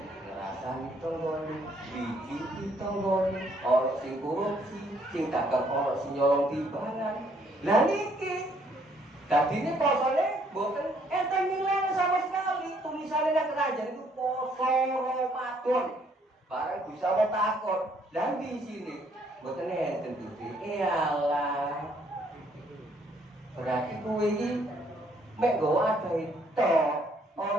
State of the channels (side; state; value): both; normal; correlation 0.66